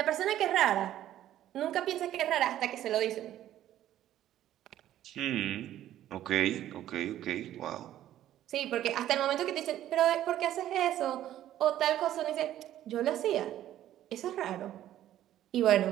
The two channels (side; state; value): left; quieter; 12.5 dB